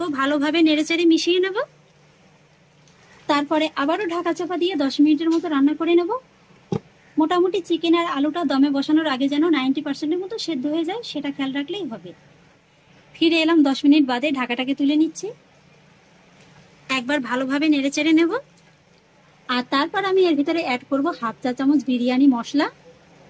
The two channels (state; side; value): identical; both; correlation 1.00